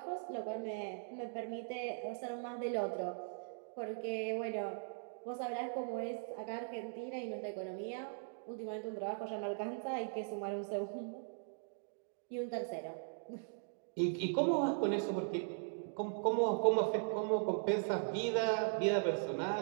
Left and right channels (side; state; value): left; silent; digital silence